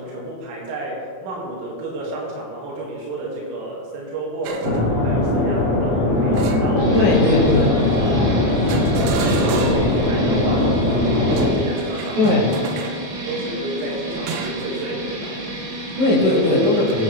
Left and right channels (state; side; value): late; left; 27 ms